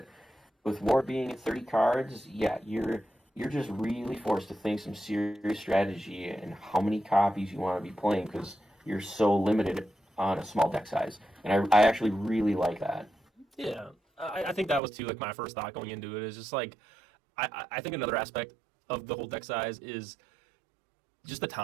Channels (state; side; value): drops out; left; at 14.8 s